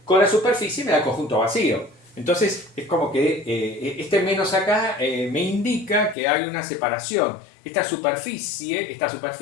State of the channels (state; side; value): drops out; right; at 6.2 s